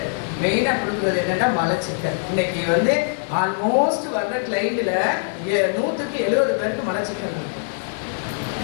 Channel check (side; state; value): right; silent; digital silence